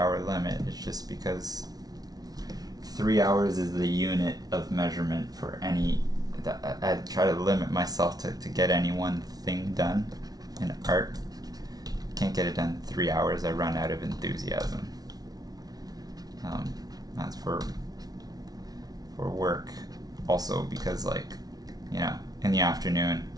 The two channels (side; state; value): left; late; 0.19 ms